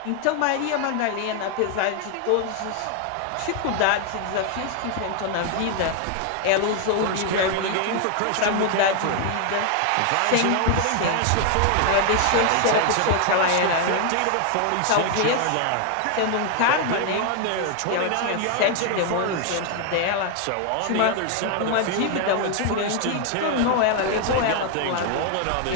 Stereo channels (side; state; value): both; different; correlation 0.00